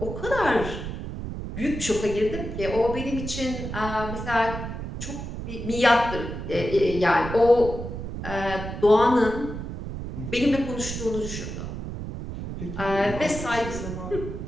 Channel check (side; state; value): right; noise; rumble, 7 dB below the sound